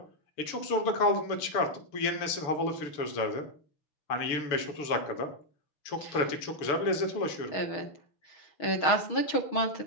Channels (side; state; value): right; late; 6.9 ms